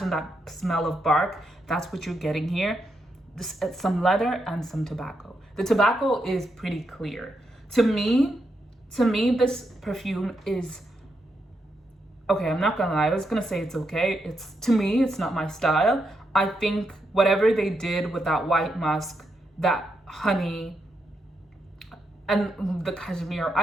that smell of bark. That's what you're getting here. Some leather and some tobacco. The tobacco is pretty clear. To me, this perfume is okay. I'm not gonna lie, I was gonna say it's okay. To me, it's not my style. I think whatever they did with that white musk, that honey, and the cashmere,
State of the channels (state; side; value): normal; both; correlation 0.82